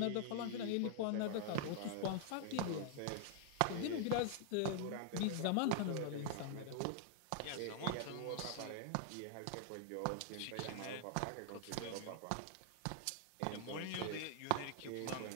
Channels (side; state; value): both; different; correlation 0.00